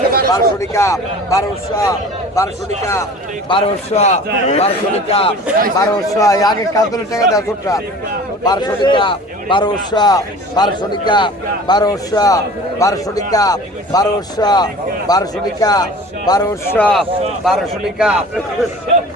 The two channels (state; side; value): normal; both; correlation 0.42